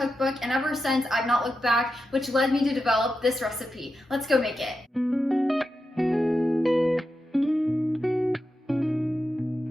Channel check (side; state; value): both; normal; correlation 0.88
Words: and ever since I've not looked back, which led me to develop this recipe. Let's go make it.